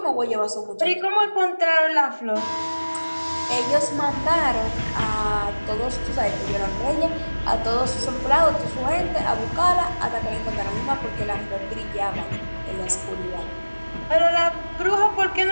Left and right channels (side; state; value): both; inverted; correlation -1.00